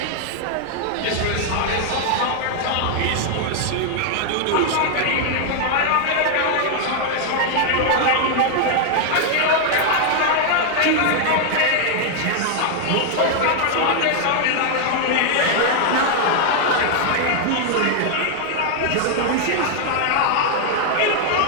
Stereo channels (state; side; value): different; both; correlation 0.00